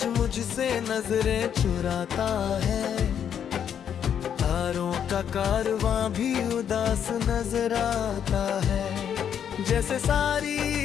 मुझसे नजरें चुराता है, तारों का कारवां भी उदास नजर आता है। जैसे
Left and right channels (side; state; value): right; quieter; 8.7 dB